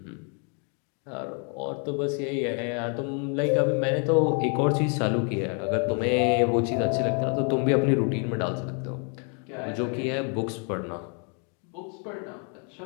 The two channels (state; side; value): quieter; right; 38.9 dB